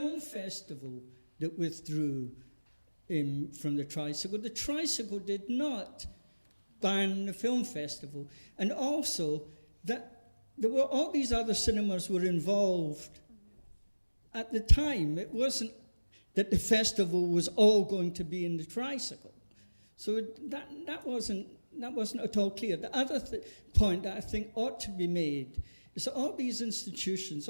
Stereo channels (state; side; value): inverted; both; correlation -1.00